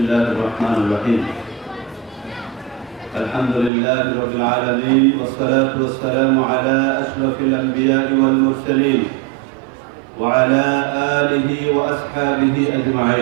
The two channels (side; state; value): left; drops out; at 3.7 s